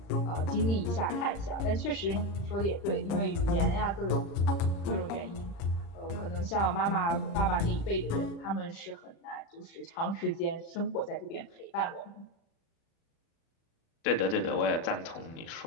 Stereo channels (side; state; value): right; late; 35 ms